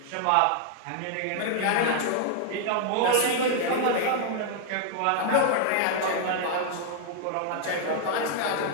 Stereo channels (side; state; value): both; different; correlation -0.01